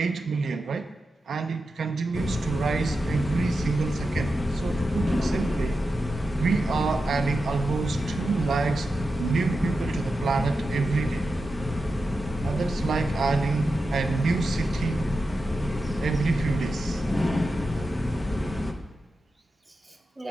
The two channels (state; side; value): normal; both; correlation 0.90